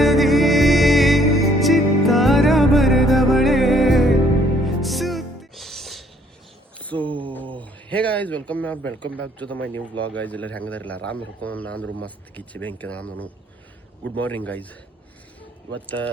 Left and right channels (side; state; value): both; normal; correlation 0.63